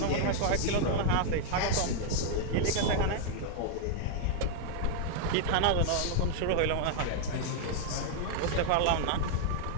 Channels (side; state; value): both; different; correlation -0.01